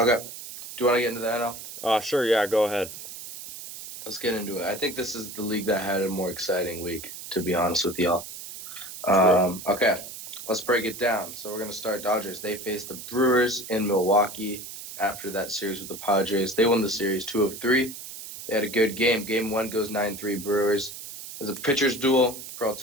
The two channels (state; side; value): noise; right; hiss, 11 dB below the sound